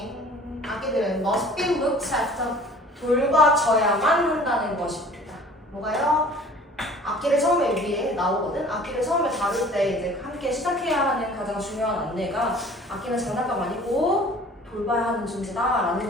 must be looked after. 돌봐줘야만 한다는 것입니다. 뭐가요? 악기를 처음에 위에 나오거든. 악기를 처음에 다룰 때 이제 함께 시작해야 하는 가장 중요한 안내가 악기는 장난감 아니고 돌봐야 하는 존재다라는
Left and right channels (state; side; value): normal; both; correlation 0.48